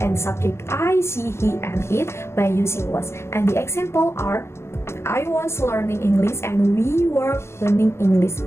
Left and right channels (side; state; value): right; late; 0.13 ms